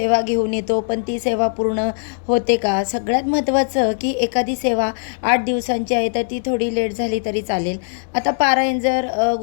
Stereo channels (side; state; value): right; silent; digital silence